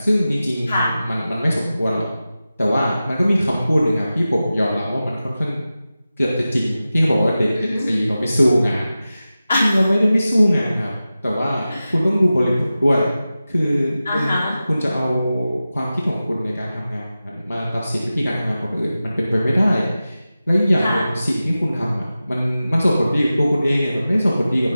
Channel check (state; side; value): inverted; both; correlation -0.94